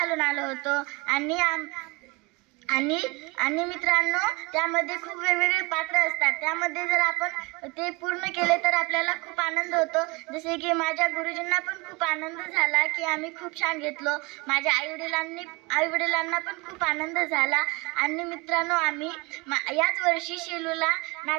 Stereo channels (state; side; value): quieter; left; 26.2 dB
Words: आलो होतो आणि मित्रांनो त्यामध्ये खूप वेगवेगळे पात्र असतात। त्यामध्ये जर आपण ते पूर्ण केले तर आपल्याला खूप आनंद होतो। जसे की माझ्या गुरुजींना पण खूप आनंद झाला की आम्ही खूप छान घेतलो। माझ्या आई-वडिलांना पण खूप आनंद झाला। आणि मित्रांनो आम्ही याच वर्षी शेलूला